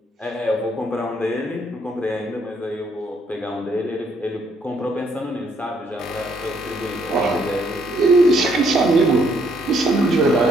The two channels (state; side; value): normal; both; correlation 0.69